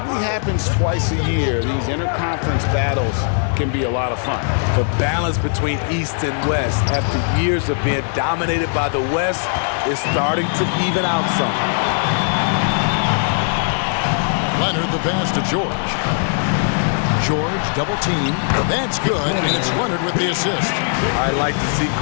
happens twice a year. These interconference battles can be a lot of fun. The balance between East and West after years of being dominated by the West is starting to even out some. Leonard the pass to George. George double team. That's good, and it's Leonard with the assist. I like to see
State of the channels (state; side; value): silent; right; 56 dB below the other